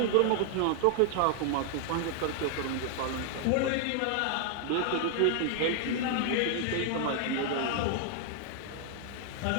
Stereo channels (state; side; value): different; both; correlation 0.00